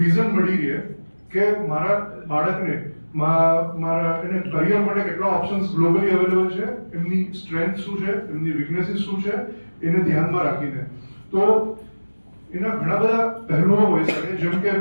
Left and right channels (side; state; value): both; inverted; correlation -1.00